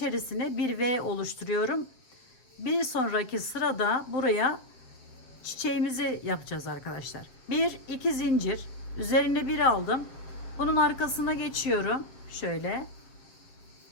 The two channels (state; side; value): late; right; 7.7 ms